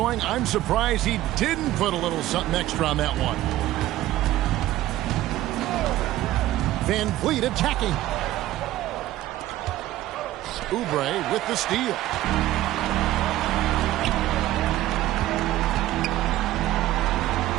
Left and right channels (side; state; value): left; quieter; 15.0 dB